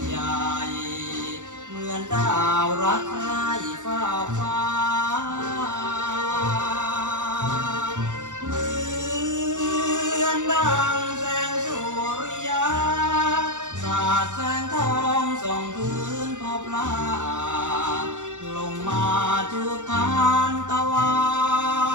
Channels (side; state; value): left; late; 0.85 ms